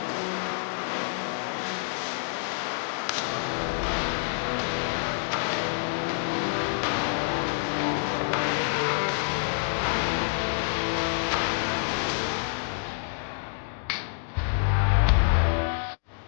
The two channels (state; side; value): silent; right; 60 dB below the other